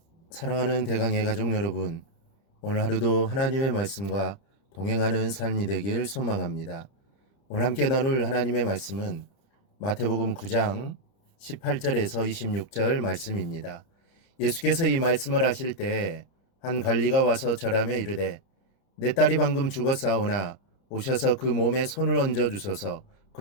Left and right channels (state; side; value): late; right; 30 ms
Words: 사랑하는 대강의 가족 여러분, 오늘 하루도 하나님의 말씀과 동행하는 삶이 되길 소망합니다. 오늘 함께 나눌 하나님의 말씀은 마태복음 9장 18절에서 26절 말씀입니다. 예수께서 이 말씀을 하실 때 한 관리가 와서 절하며 이르되 내 딸이 방금 죽었사오나 오셔서 그 몸에 손을 얹어 주소서.